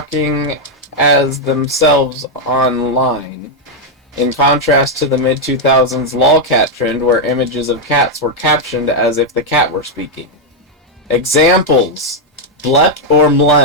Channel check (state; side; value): normal; both; correlation 0.00